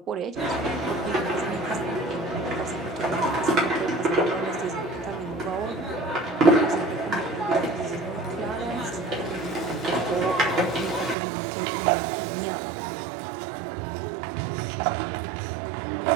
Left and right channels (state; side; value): drops out; left; at 11.2 s